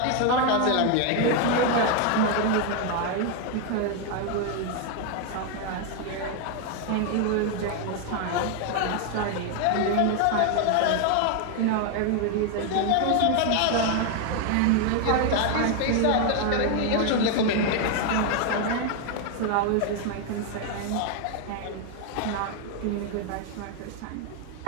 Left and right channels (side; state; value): both; different; correlation 0.01